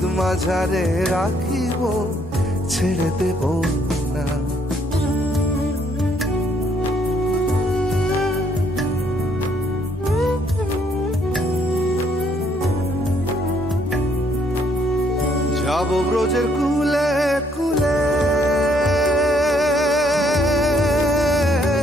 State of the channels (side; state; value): both; normal; correlation 0.68